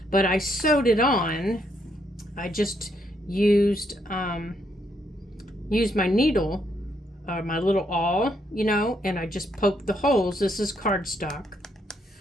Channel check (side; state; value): both; normal; correlation 0.75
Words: but I sewed it on. I just used my needle, my little awl, you know, and I just poked the holes. This is cardstock,